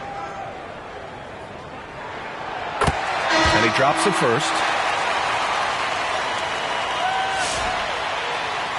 And he drops the first.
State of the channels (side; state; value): both; identical; correlation 1.00